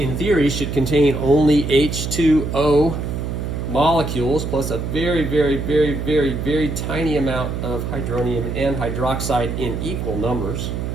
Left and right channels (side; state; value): right; noise; hum, 4 dB below the sound